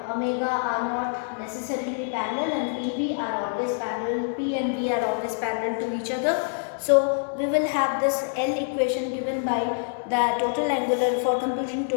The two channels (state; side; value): silent; right; digital silence